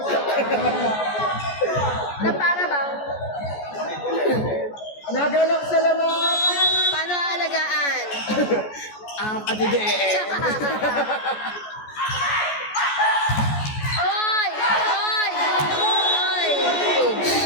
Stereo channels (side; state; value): right; late; 14 ms